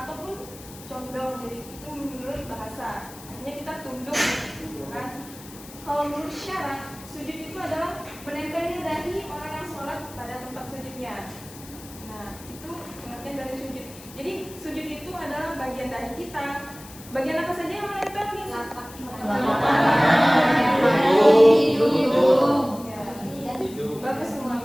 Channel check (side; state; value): left; noise; hiss, 18 dB below the sound